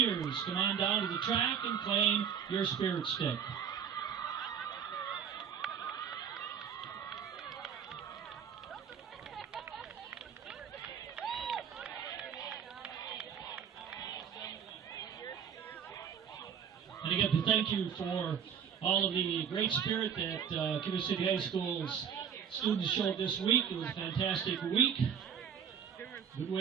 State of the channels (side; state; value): left; quieter; 7.9 dB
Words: Come on down to the track and claim your Spirit Stick. And again, thank you for all of the great spirit that Cuba City High School's students showed this week. It was a fantastic week. Good